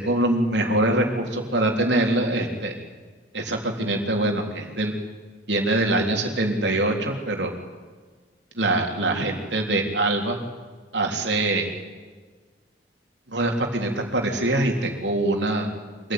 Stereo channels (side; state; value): both; normal; correlation 0.29